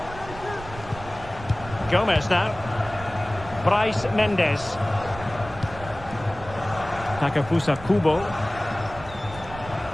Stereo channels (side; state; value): right; noise; rumble, 14 dB below the sound